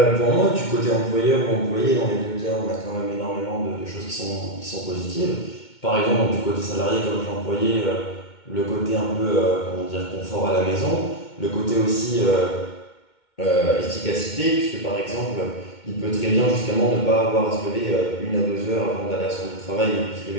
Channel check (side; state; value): right; late; 2.2 ms